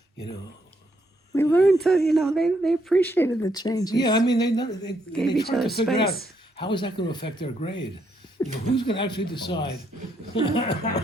We learned to, they appreciated the changes. Yeah, I mean, they Gave each tried to other figure out space. how is that going to affect their grade. Who's going to actually decide? Right.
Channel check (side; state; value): both; normal; correlation 0.75